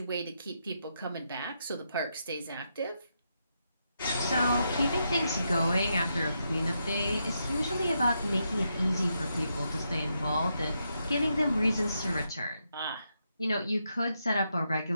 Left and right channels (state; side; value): inverted; both; correlation -0.82